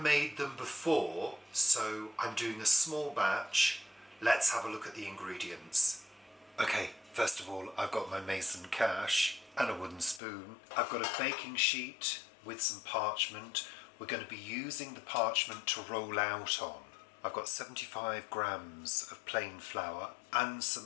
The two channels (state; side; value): drops out; right; at 10.2 s